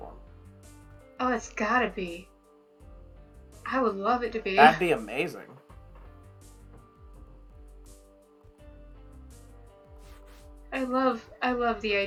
Oh, it's gotta be. I would love it to be. That'd be amazing. I love the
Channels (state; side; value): identical; both; correlation 1.00